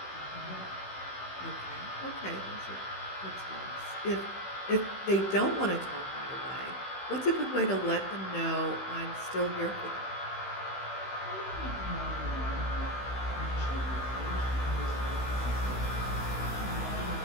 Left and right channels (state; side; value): late; right; 16 ms